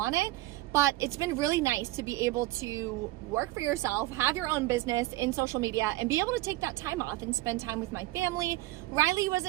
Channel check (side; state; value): left; quieter; 18.3 dB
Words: it, but it's been really nice to be able to work for yourself, have your own business in social media, and be able to take that time off and spend time with my family. Riley was